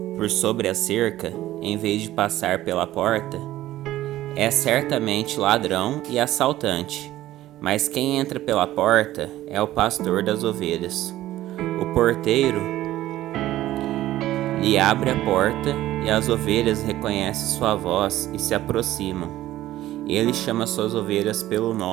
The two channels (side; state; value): left; quieter; 14.7 dB